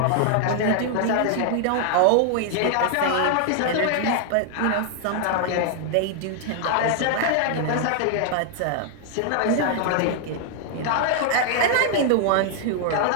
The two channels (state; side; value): different; both; correlation 0.00